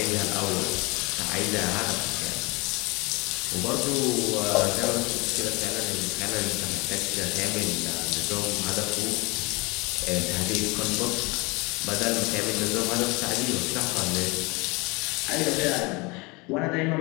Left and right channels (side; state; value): right; quieter; 26.4 dB